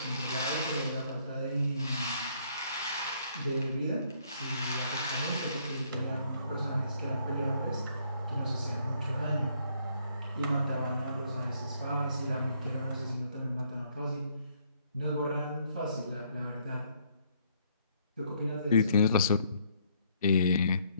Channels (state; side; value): inverted; both; correlation -0.67